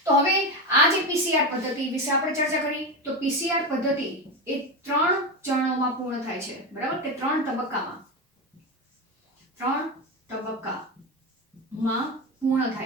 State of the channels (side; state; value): both; normal; correlation 0.17